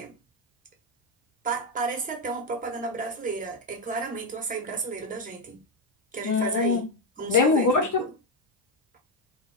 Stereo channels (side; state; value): both; normal; correlation 0.06